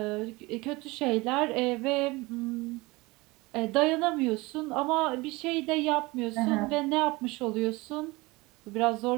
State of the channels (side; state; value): left; quieter; 22.9 dB